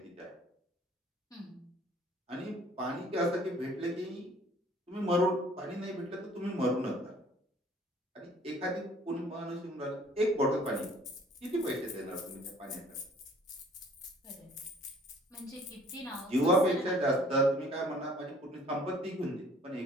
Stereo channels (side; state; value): both; normal; correlation 0.55